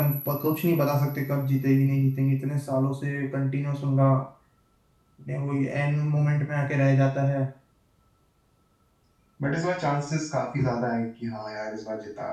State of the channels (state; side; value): identical; both; correlation 1.00